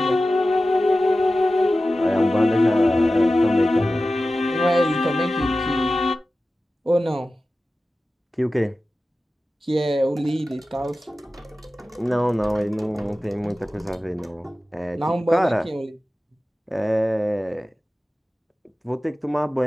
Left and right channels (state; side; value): normal; both; correlation 0.95